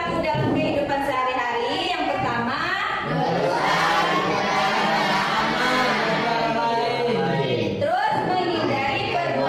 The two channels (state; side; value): identical; both; correlation 1.00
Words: dalam kehidupan sehari-hari yang pertama, terus menghindari